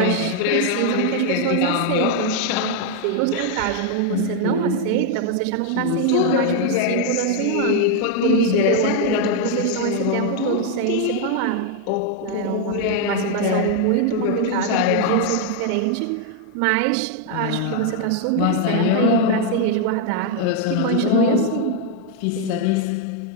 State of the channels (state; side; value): different; both; correlation 0.00